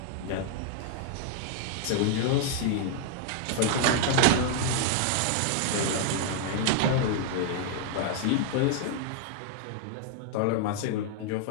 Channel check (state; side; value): different; both; correlation 0.00